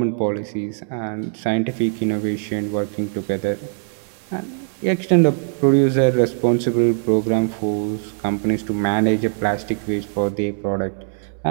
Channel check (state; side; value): silent; left; 65 dB below the other